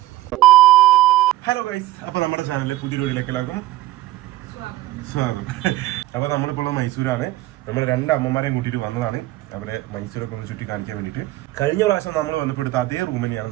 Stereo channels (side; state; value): left; quieter; 16.4 dB